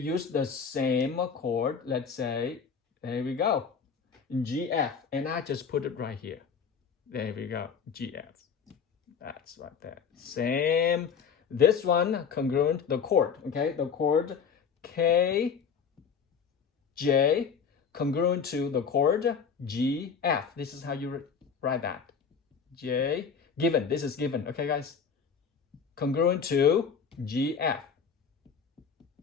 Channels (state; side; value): quieter; right; 6.4 dB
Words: the same chord. Let's say, there we go, GF, and I just put it right here. There we go, GF. That's right there. Same. This one congruent, the chord, okay? The chord K, J, congruent to the chord G, F. This is how you write that. J, given. This is given, okay, guys? Congruent to G, F.